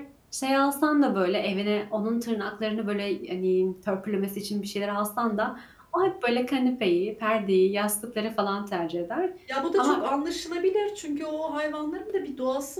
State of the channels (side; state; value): both; identical; correlation 1.00